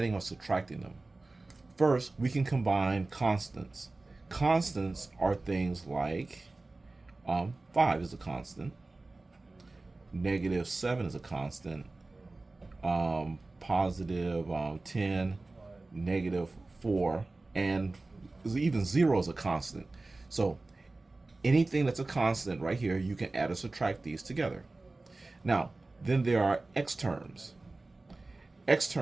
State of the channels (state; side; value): quieter; left; 3.2 dB